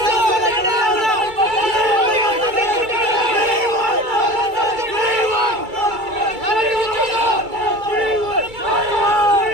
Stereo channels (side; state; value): left; late; 2.3 ms